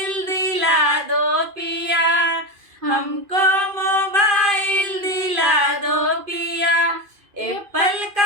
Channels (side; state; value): left; late; 2.5 ms